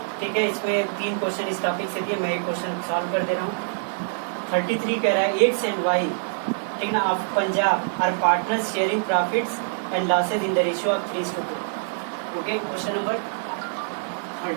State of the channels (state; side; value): silent; left; digital silence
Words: ठीक है, इसमें 3 क्वेश्चन इस टॉपिक से दिए, मैं एक क्वेश्चन सॉल्व कर दे रहा हूँ। 33 कह रहा है एक्स एंड वाई, ठीक ना, of Punjab are partners sharing profits and losses in the ratio of 3:2। Okay, question number